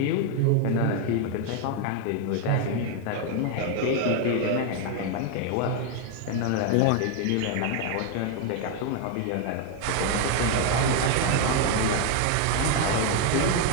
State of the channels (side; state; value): both; different; correlation 0.01